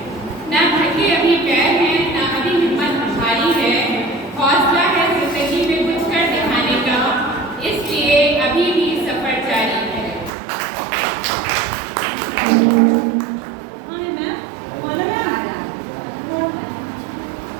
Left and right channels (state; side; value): drops out; left; at 10.3 s